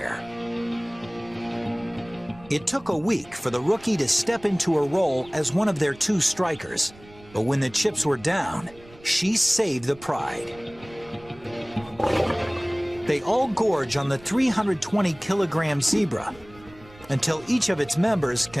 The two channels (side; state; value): right; noise; rumble, 23 dB below the sound